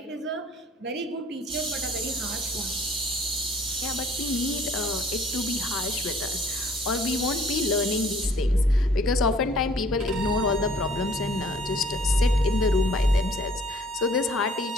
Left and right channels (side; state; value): both; normal; correlation 0.57